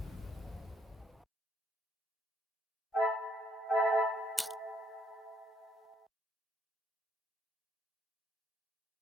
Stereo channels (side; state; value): both; normal; correlation 0.70